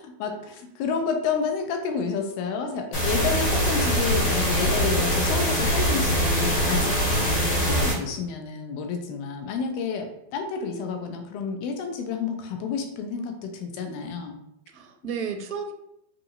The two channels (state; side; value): late; right; 12 ms